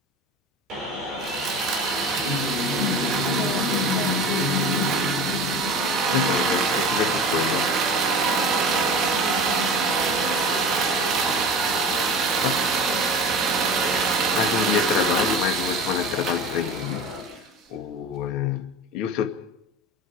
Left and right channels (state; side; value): normal; both; correlation 0.35